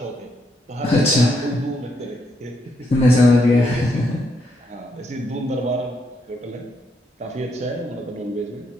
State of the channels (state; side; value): normal; both; correlation 0.77